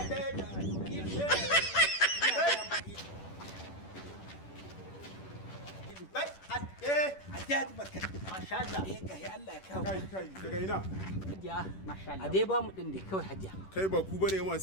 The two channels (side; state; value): right; late; 10 ms